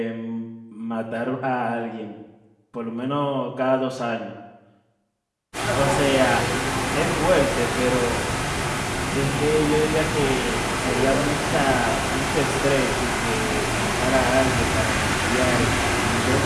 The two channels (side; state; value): both; identical; correlation 1.00